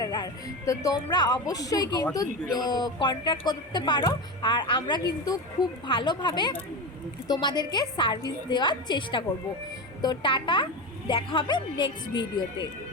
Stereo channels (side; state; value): both; normal; correlation 0.21